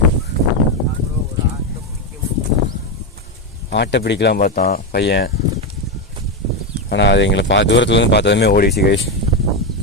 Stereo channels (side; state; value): both; normal; correlation 0.09